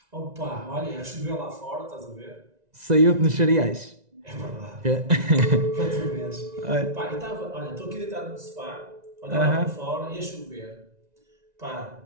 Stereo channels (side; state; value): left; late; 1.9 ms